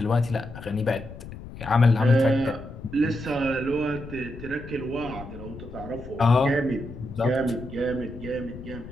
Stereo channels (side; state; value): left; noise; rumble, 13 dB below the sound